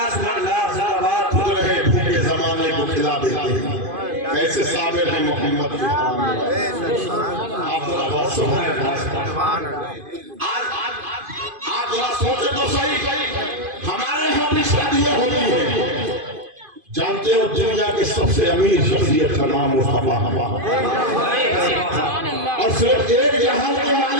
कैसे साबिर है मोहम्मद की आप जरा सोचे तो सही, हमारे यहाँ भी शादियाँ होती है। जानते हो दुनिया के सबसे अमीर शख्सियत का नाम मुस्तफा और सिर्फ एक जहान के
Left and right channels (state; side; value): late; left; 2.5 ms